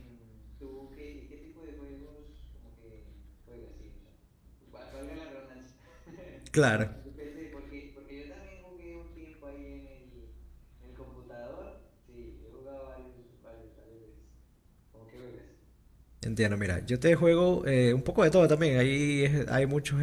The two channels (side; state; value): both; identical; correlation 1.00